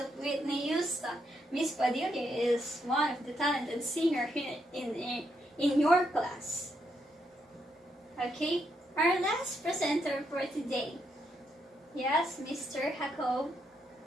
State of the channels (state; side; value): normal; both; correlation 0.78